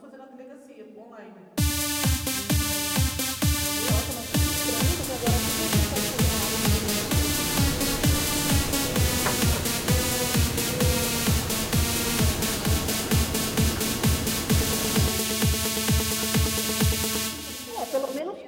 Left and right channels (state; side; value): identical; both; correlation 1.00